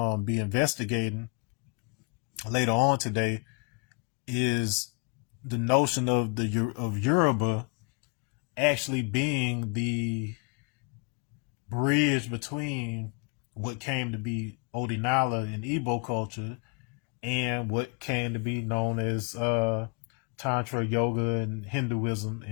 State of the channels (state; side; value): quieter; right; 34.0 dB